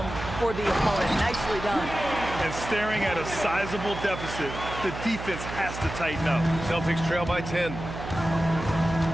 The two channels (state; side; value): noise; right; hum, 9 dB below the sound